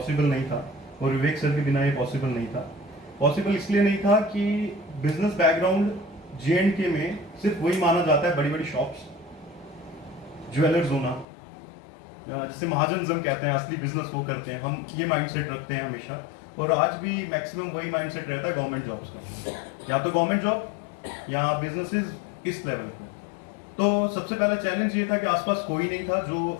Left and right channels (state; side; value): drops out; right; at 11.2 s